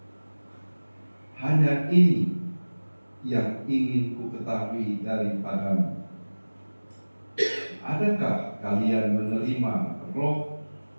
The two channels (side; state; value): both; inverted; correlation -1.00